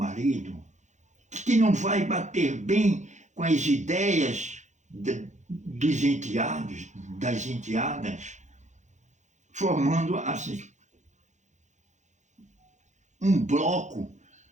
que não vai bater bem com as ideias dos enteados, das enteadas, formando assim um bloco,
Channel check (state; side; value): late; left; 0.35 ms